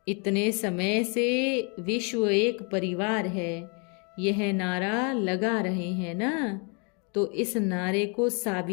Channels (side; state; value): right; quieter; 35.6 dB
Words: इतने समय से विश्व एक परिवार है, यह नारा लगा रहे हैं ना, तो इस नारे को